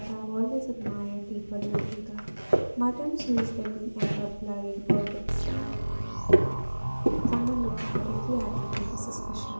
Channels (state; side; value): inverted; both; correlation -1.00